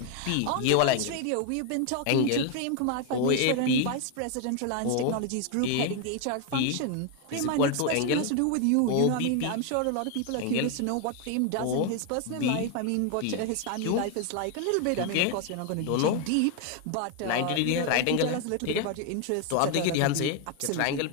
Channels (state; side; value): different; both; correlation 0.01